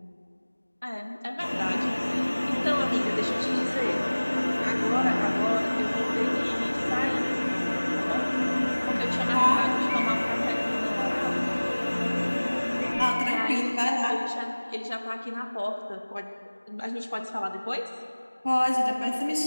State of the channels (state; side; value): inverted; both; correlation -1.00